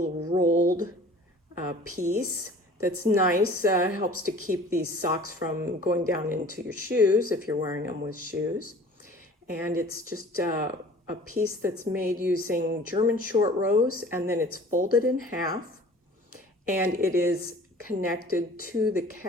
rolled piece that's nice, helps to keep these socks from going down into your shoes if you're wearing them with shoes. And it's just a piece that's made using German short rows, and then it's folded in half, and it is connected to the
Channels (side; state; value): both; normal; correlation 0.46